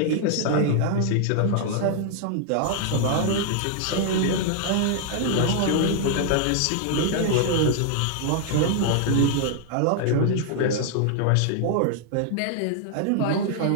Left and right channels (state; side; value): different; both; correlation 0.00